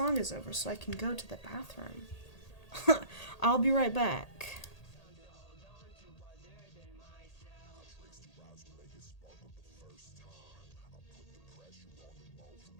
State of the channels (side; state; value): right; late; 1.8 ms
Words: is over, so I can go to the bathroom. I'll be right back.